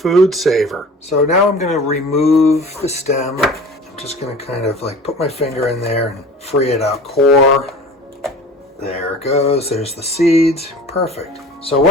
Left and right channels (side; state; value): both; normal; correlation 0.42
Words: saver. So now I'm going to remove the stem. I'm just going to kind of like put my finger in there and free it up. Core, there it goes, there's the seeds, perfect. So